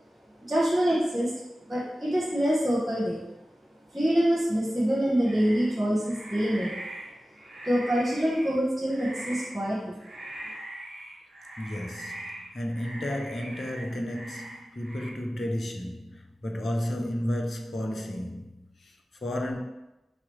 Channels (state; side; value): normal; both; correlation 0.95